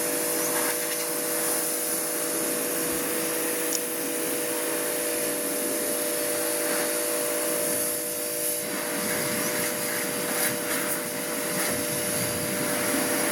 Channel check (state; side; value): identical; both; correlation 1.00